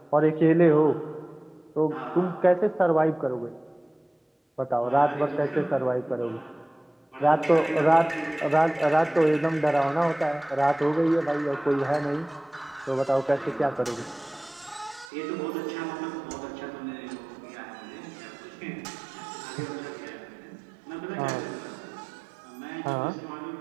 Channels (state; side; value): drops out; left; at 15.1 s